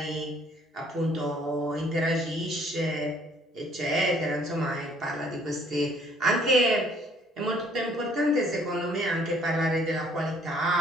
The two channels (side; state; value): both; normal; correlation 0.61